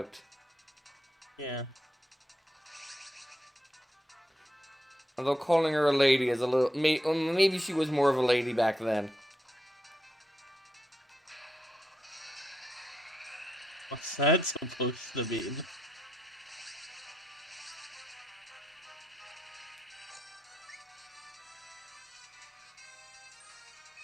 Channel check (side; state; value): both; normal; correlation 0.83